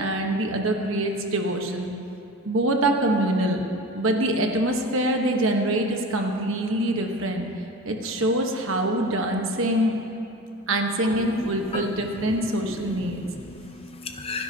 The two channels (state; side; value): normal; both; correlation 0.33